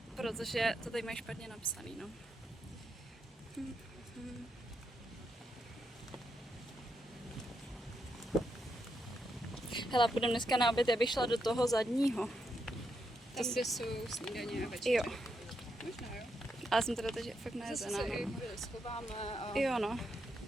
protože to tady mají špatně napsaný, no. Hele, půjdeme dneska na oběd, já bych šla do toho zadního. Tam, kde jsou snídaně a večeře. Jo, Možná jo. ale jsem teda teď fakt Zase nejezená. se i chvíli schováme a Jo, no,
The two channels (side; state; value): both; normal; correlation 0.82